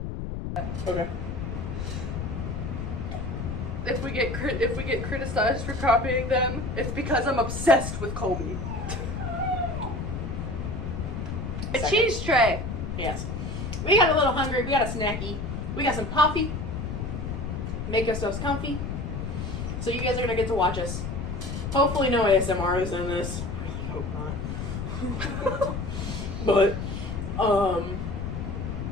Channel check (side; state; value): left; noise; rumble, 4 dB below the sound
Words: Okay. If we get criticized for copying them, it's because I'm obsessed with Colby. A cheese tray. Yes. We got a little hungry. We got a snacky. We got some coffee. Make ourselves comfy. So you guys are gonna get to watch us. Hopefully no ASMR is in this. I really hope not. But